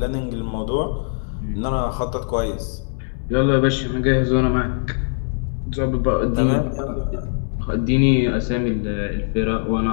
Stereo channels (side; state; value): right; silent; 65 dB below the other